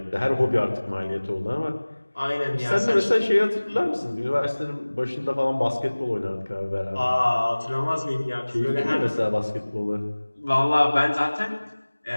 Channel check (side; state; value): both; inverted; correlation -1.00